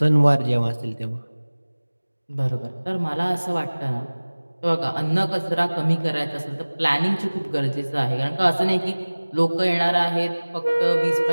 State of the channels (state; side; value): inverted; both; correlation -1.00